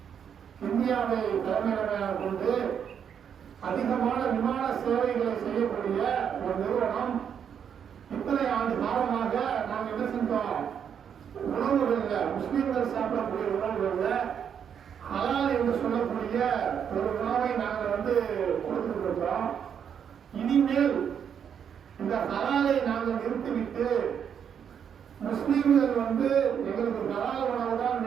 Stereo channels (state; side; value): quieter; left; 8.0 dB